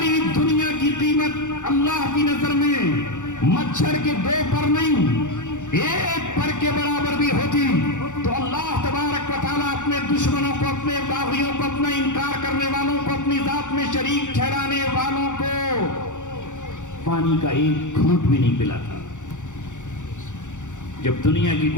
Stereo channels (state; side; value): late; right; 0.85 ms